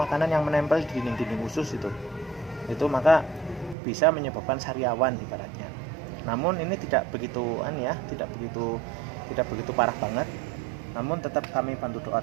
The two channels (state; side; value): drops out; left; at 3.8 s